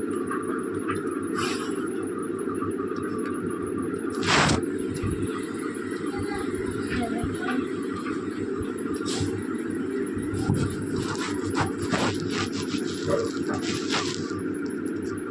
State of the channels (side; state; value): both; identical; correlation 1.00